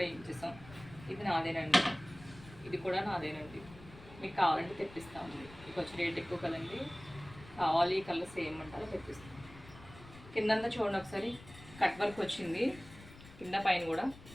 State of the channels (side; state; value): left; noise; rumble, 19 dB below the sound